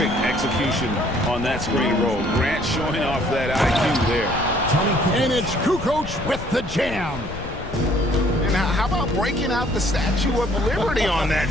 execution on that screen roll. Grant showing off that IQ there. And it's Kukoc with the jam. And how about breaking out the Statue of Liberty on that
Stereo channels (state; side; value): noise; left; rumble, 11 dB below the sound